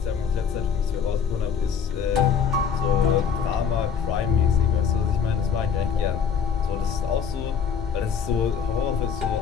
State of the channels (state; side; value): quieter; right; 7.0 dB